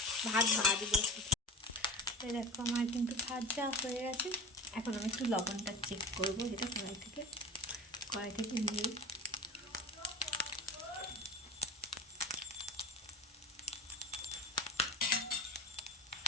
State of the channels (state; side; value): normal; both; correlation 0.31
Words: ভাত ভাজবো। দেখো আমার কিন্তু ভাজা হয়ে গেছে। এখন আমি একটু লবণটা চেক করবো, যেটা কড়াই থেকে নিয়ে